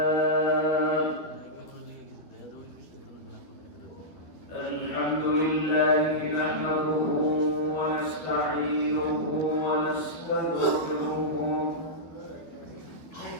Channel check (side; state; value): right; late; 12 ms